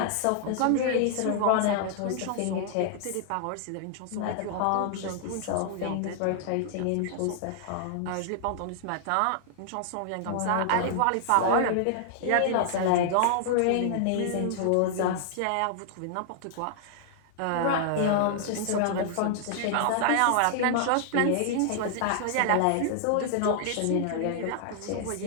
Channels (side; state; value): both; different; correlation -0.01